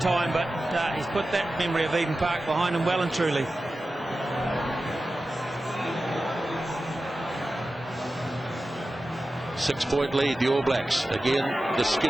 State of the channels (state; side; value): normal; both; correlation 0.94